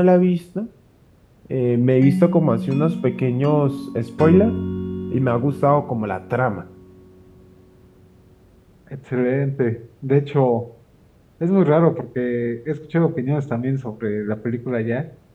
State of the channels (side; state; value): both; identical; correlation 1.00